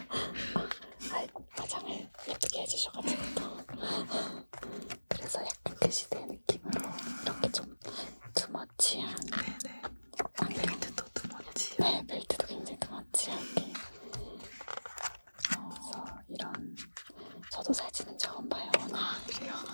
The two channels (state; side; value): inverted; both; correlation -1.00